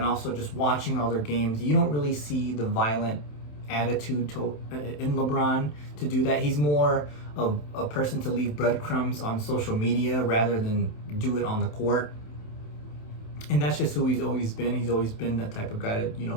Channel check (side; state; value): right; late; 27 ms